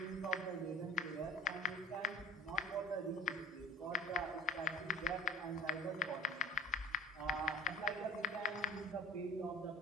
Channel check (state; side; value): normal; both; correlation 0.37